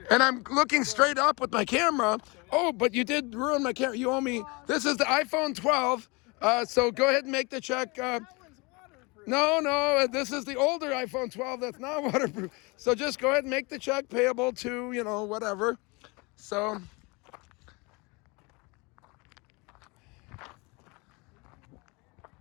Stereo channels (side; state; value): right; quieter; 27.6 dB